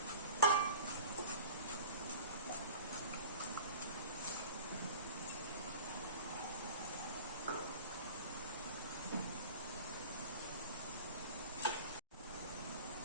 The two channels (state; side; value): inverted; both; correlation -0.41